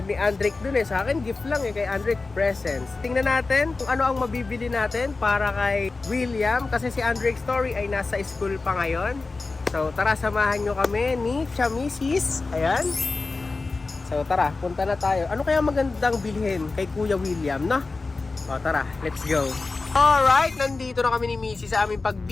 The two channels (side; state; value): right; quieter; 3.8 dB